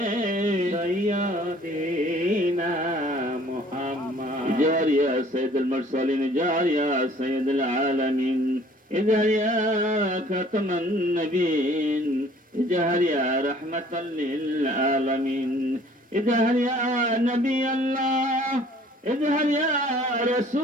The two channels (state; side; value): normal; both; correlation 0.55